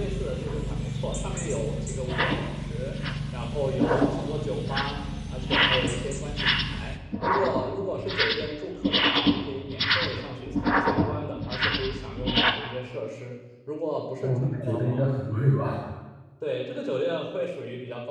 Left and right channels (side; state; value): both; identical; correlation 1.00